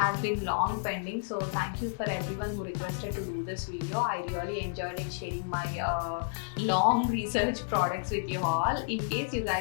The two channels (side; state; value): right; silent; digital silence